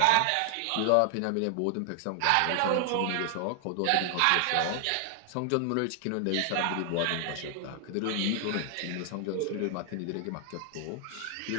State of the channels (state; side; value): different; both; correlation 0.00